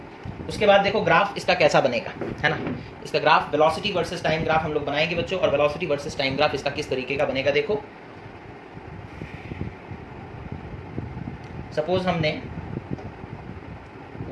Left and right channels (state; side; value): identical; both; correlation 1.00